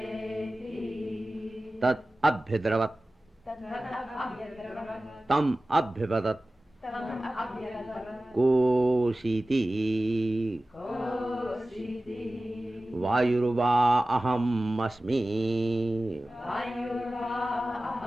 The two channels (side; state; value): both; normal; correlation 0.96